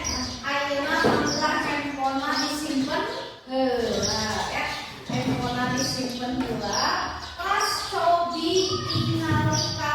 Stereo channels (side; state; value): both; identical; correlation 1.00